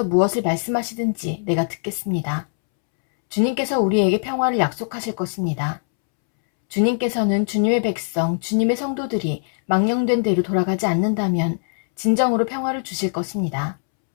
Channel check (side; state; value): right; silent; 65 dB below the other